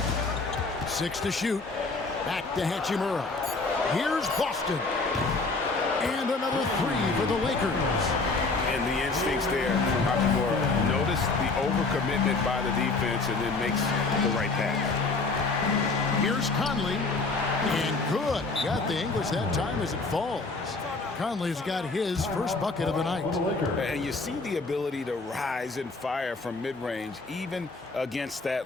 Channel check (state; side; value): quieter; right; 3.7 dB